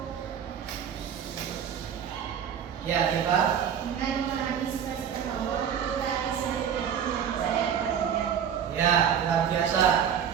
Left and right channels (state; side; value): quieter; left; 8.3 dB